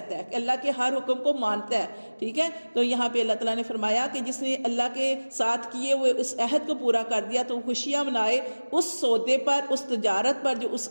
है, कि अल्लाह के हर हुक्म को मानता है, ठीक है। तो यहाँ पे अल्लाह ताला ने फरमाया कि जिसने अल्लाह के साथ किए हुए उस अहद को पूरा कर दिया तो खुशियाँ मनाए उस सौदे पर, उस तजारत पर जो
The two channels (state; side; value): inverted; both; correlation -1.00